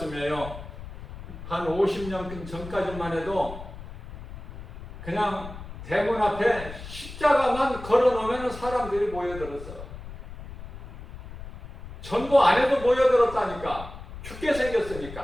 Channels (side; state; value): left; noise; rumble, 13 dB below the sound